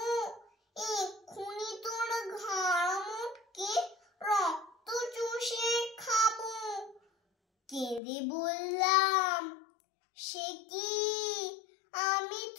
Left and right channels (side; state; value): right; drops out; at 8.0 s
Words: এক্ষুনি তোর ঘাড় মোটকে রক্ত চুষে খাবো। কেঁদে বললাম, সে কি, আমি